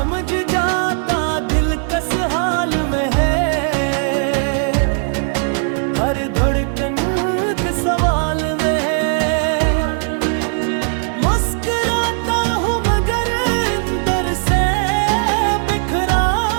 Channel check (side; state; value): left; silent; 55 dB below the other